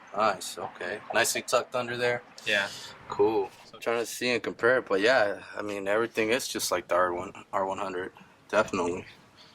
nice. Okay, nicely tucked under there. Yeah. Cool. I'm trying to see and compare it, but yeah, I mean everything is just like the R100, definitely.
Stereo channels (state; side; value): identical; both; correlation 1.00